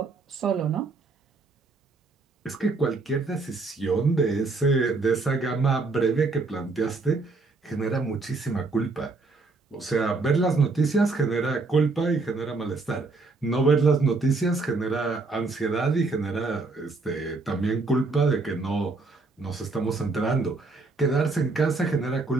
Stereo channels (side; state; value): left; quieter; 3.8 dB